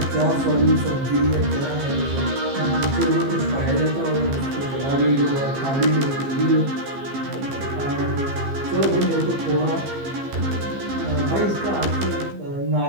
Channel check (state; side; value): late; left; 15 ms